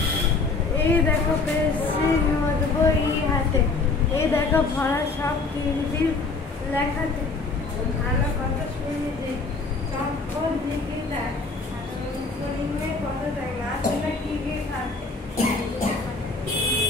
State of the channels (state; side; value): quieter; right; 4.0 dB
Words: এই দেখো পেন্সিল নোট বই হাতে, এই দেখো ভরা সব তিনটি লেখাতে, ভালো কথা শুনিতে চম্পর দিকে দেয়, কত দেয় না শুনে কি গিয়ে খাতে,